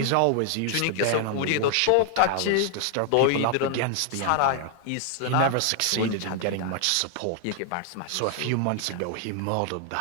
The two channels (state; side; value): different; both; correlation 0.00